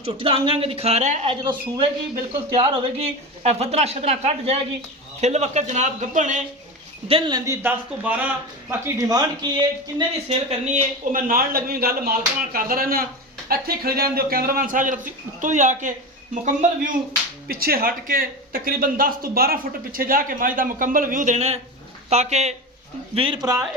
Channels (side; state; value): both; normal; correlation 0.24